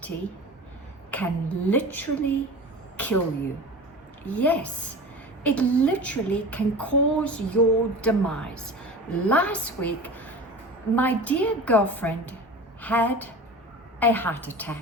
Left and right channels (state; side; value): normal; both; correlation 0.35